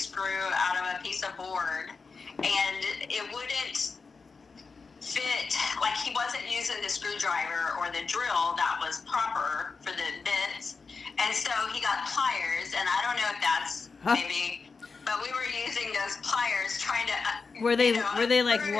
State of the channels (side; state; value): right; quieter; 4.6 dB